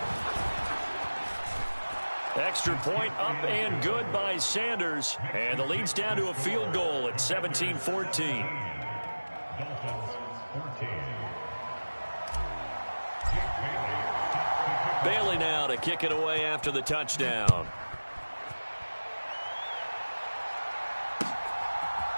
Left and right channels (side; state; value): both; inverted; correlation -1.00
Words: Extra point up and good by Sanders. And the lead's down to a field goal at 17-14. Bailey now to kick it away after the touchdown.